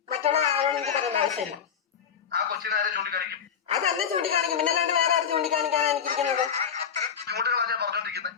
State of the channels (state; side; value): quieter; right; 7.7 dB